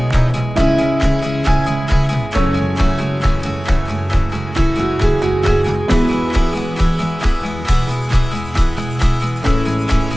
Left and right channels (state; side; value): normal; both; correlation 0.97